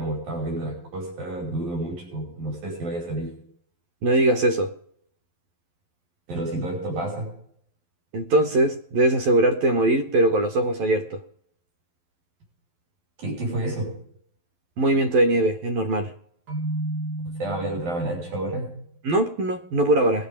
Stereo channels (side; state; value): left; late; 12 ms